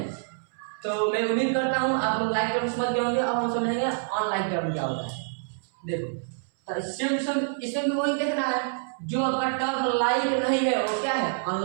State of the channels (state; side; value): silent; left; 60 dB below the other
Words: तो मैं उम्मीद करता हूँ आप लोग लाइक टर्म समझ गए होंगे। अब हम समझेंगे अनलाइक टर्म क्या होता है। देखो तो इसमें भी वही देखना है, जो आपका टर्म लाइक नहीं है वो क्या है